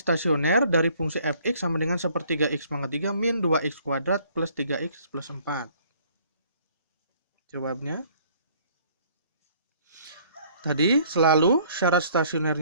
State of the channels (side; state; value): both; inverted; correlation -0.59